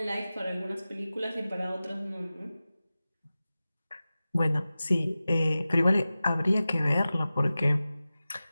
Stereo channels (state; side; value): inverted; both; correlation -0.96